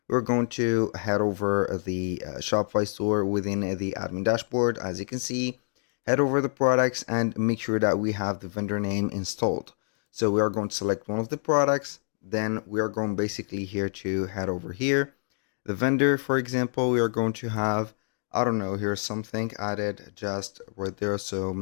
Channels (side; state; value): right; silent; digital silence